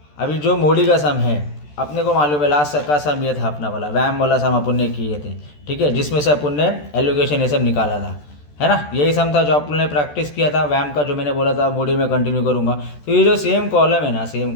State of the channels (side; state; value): right; late; 14 ms